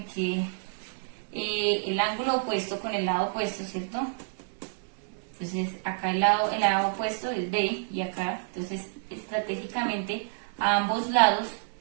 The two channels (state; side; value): silent; left; digital silence